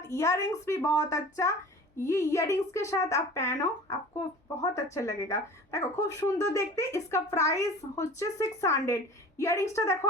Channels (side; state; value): both; normal; correlation 0.42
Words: इयररिंग्स भी बहुत अच्छा, ये इयररिंग्स के साथ आप पहनो, आपको बहुत अच्छा लगेगा। देखो खूब सुंदर देखते। इसका प्राइस হচ্ছে 600। ইয়ারিংসটা দেখো